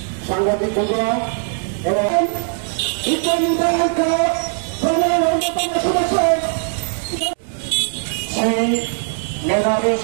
সাংবাদিক বন্ধুরা এবং সেই মেধাবী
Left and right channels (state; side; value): silent; left; 66 dB below the other